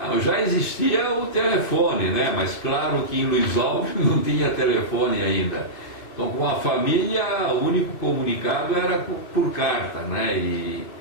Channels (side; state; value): right; late; 2.5 ms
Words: Já existia o telefone, né? Mas claro que em Luiz Alves não tinha telefone ainda. Então com a família o único comunicado era por carta, né?